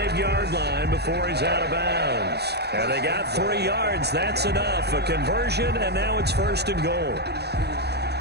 line before he's out of bounds. And they got 3 yards. That's enough. A conversion, and now it's 1st and goal.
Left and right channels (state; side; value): late; left; 0.48 ms